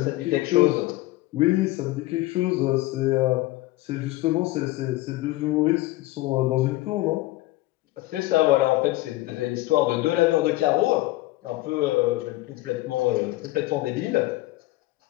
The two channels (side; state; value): right; quieter; 18.5 dB